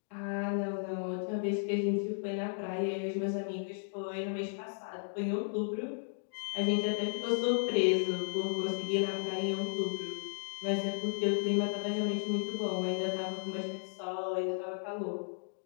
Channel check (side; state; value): right; silent; digital silence